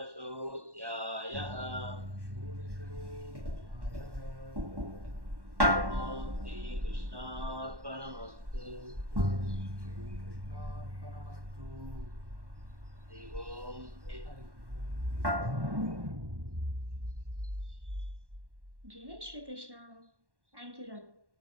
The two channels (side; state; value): left; late; 1.1 ms